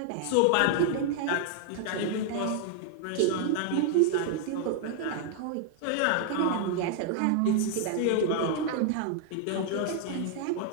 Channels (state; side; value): different; both; correlation 0.00